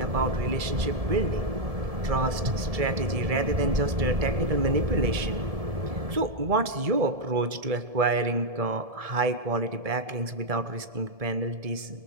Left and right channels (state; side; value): late; left; 1.7 ms